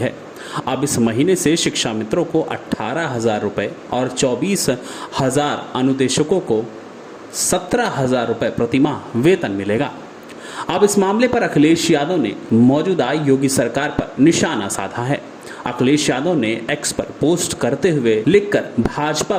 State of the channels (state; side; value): identical; both; correlation 1.00